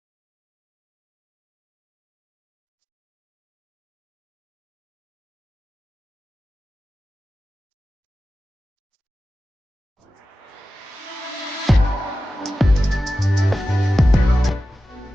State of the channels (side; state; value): both; normal; correlation 0.94